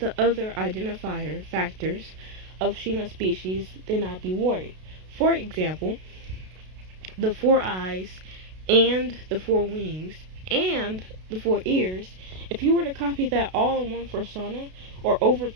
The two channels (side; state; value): left; late; 32 ms